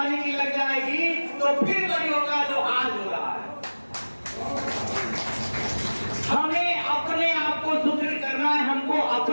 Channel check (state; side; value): inverted; both; correlation -1.00